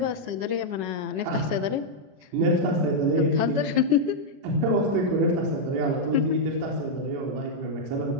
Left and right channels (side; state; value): left; late; 21 ms